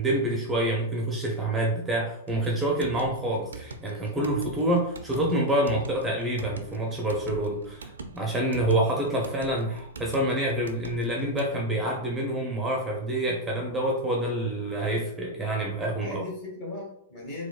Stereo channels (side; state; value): both; normal; correlation 0.08